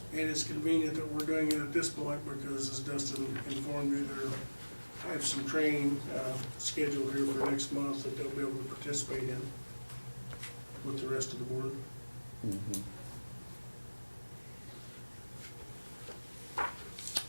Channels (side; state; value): both; inverted; correlation -1.00